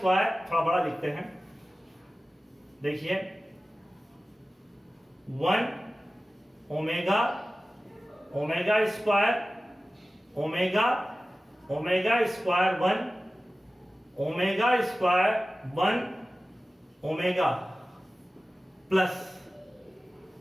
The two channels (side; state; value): both; normal; correlation 0.96